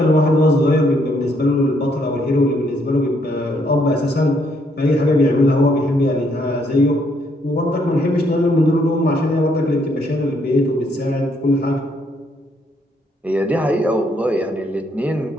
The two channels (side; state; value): both; normal; correlation 0.71